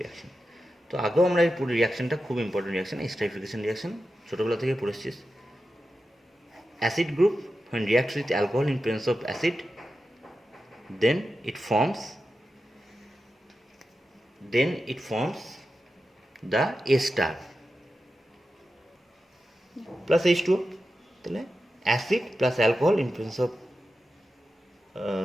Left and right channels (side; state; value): both; normal; correlation 0.91